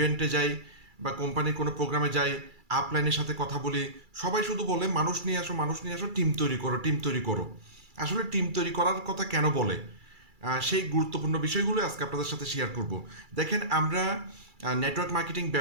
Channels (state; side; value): late; left; 2.3 ms